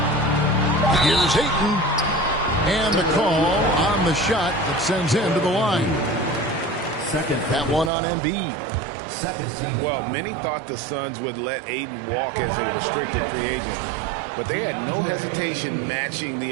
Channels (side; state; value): left; drops out; at 7.9 s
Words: Here's Ayton. And the call on the shot that sends him to the line. Second. That one on Embiid. Second team. Well, many thought the Suns would let Ayton walk as a restricted free agent, but they had no hesitation matching